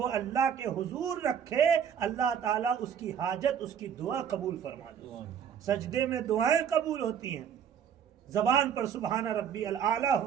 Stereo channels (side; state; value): left; quieter; 8.2 dB